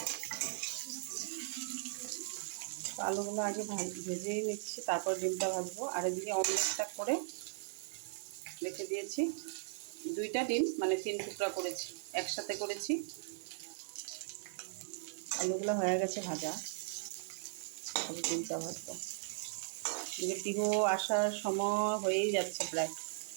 আলুগুলো আগে ভেজেই নিচ্ছি, তারপর ডিমটা ভাজবো। আর এদিকে অমলেটটা করে রেখে দিয়েছি। 2টা ডিম, মানে 3 টুকরা করেছি, একসাথে করেছি। আলুগুলো হয়ে গেছে ভাজা, তবে ডিমটা ভাজবো। এদিকে পিহু আসার সময় হয়েই যাচ্ছে প্রায়।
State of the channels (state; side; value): silent; left; digital silence